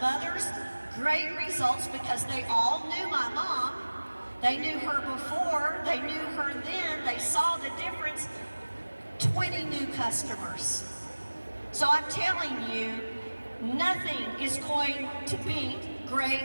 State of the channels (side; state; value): both; inverted; correlation -1.00